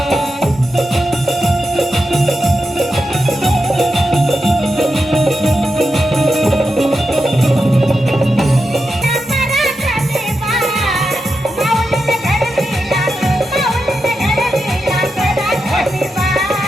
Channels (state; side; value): normal; both; correlation 0.88